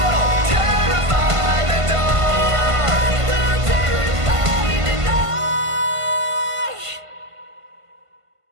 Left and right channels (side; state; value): left; late; 1.5 ms